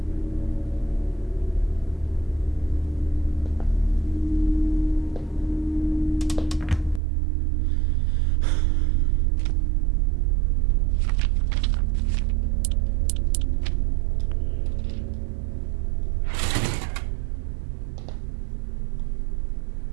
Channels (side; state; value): left; drops out; at 7.0 s